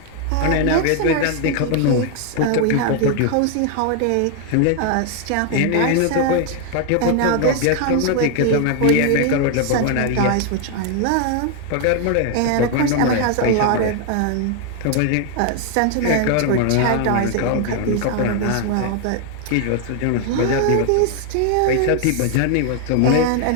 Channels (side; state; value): both; different; correlation 0.00